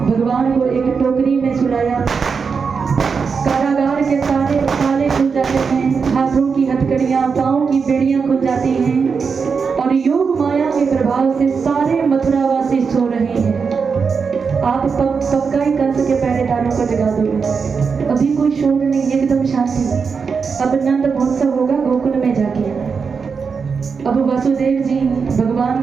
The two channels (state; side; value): quieter; left; 5.5 dB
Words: भगवान को एक टोकरी में सुलाया। कारागार के सारे ताले खुल जाते हैं, हाथों की हथकड़ियां, पांव की बेड़ियां खुल जाती हैं और योग माया के प्रभाव से सारे मथुरावासी सो रहे हैं। आप पक्का ही कंस के पहरेदारों को जगा दोगे। अभी कोई शोर नहीं, एकदम शांति। अब नंद महोत्सव होगा गोकुल में जाके। अब वासुदेव जी भगवान